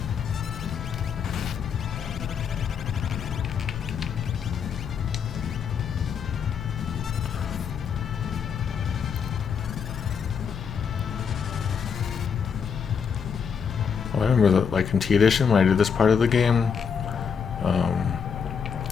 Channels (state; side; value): quieter; right; 6.7 dB